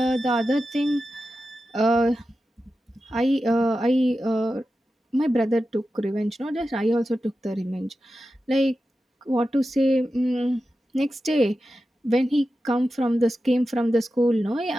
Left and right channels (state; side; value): normal; both; correlation 0.92